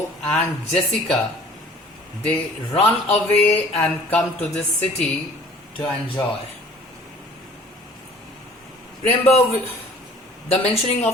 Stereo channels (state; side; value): normal; both; correlation 0.51